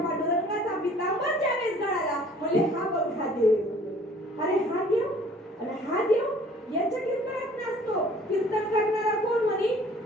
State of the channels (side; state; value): both; normal; correlation 0.53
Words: पांडुरंगाचा पितांबर ज्यावेळेस गळाला, म्हणजे हा बघ हा देव. अरे हा देव आणि हा देव याच्या कीर्तनात नसतो. कीर्तन करणारा कोण म्हणे?